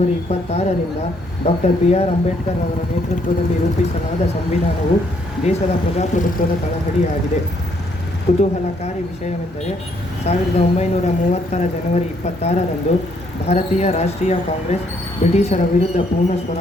26ರಿಂದ ಡಾಕ್ಟರ್ BR ಅಂಬೇಡ್ಕರ್ ಅವರ ನೇತೃತ್ವದಲ್ಲಿ ರೂಪಿಸಲಾದ ಸಂವಿಧಾನವು ದೇಶದ ಪ್ರಜಾಪ್ರಭುತ್ವದ ತಳಹದಿಯಾಗಿದೆ. ಕುತೂಹಲಕಾರಿ ವಿಷಯವೆಂದರೆ 1930ರ ಜನವರಿ 26ರಂದು ಭಾರತೀಯ ರಾಷ್ಟ್ರೀಯ ಕಾಂಗ್ರೆಸ್ ಬ್ರಿಟಿಷರ ವಿರುದ್ಧ ಪೂರ್ಣ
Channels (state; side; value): normal; both; correlation 0.70